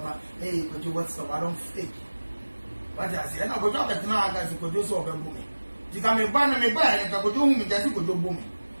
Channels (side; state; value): both; inverted; correlation -1.00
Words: hey, but you what's up? I don't fake. But I say, I go talk at now, guys, you could do so. You can be banner me by and I go do me, that's good booming.